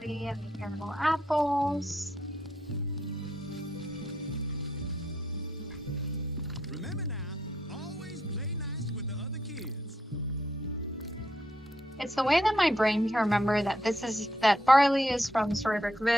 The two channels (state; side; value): normal; both; correlation 0.77